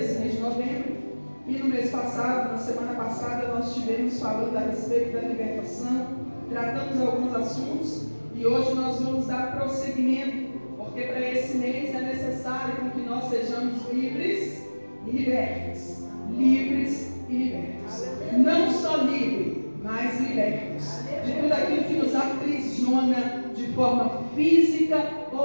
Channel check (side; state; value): both; inverted; correlation -1.00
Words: mês de novembro. E no mês passado, na semana passada, nós estivemos falando a respeito da libertação, tratamos alguns assuntos e hoje nós vamos dar prosseguimento, porque para esse mês é necessário que nós sejamos livres e libertos. Livres e libertos. Não só livres, mas libertos de tudo aquilo que nos aprisiona de forma física